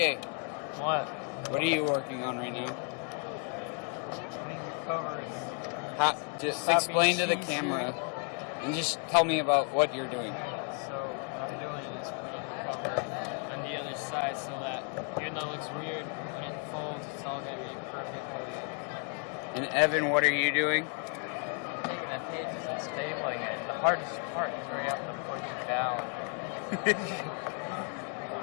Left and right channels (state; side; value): quieter; right; 39.0 dB